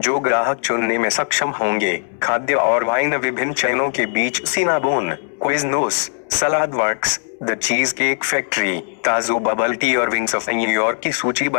जो ग्राहक चुनने में सक्षम होंगे, खाद्य और वाइन विभिन्न चयनों के बीच Cinnabon, Quiznos, Saladworks, the Cheesecake Factory, Tazo bubble tea और विंग्स ऑफ न्यूयॉर्क की सूची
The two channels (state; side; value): silent; right; 66 dB below the other